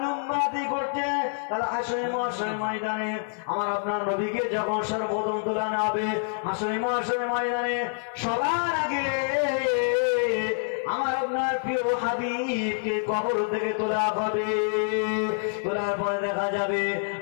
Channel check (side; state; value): right; silent; 60 dB below the other